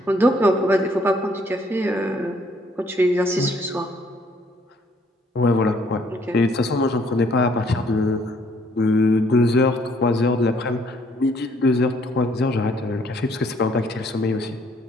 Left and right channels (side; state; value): both; normal; correlation 0.64